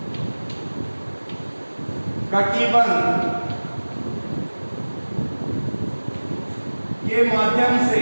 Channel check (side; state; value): both; inverted; correlation -1.00